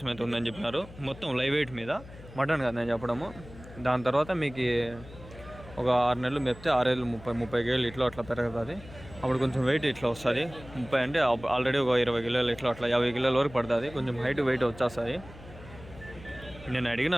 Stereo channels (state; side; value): noise; left; hum, 18 dB below the sound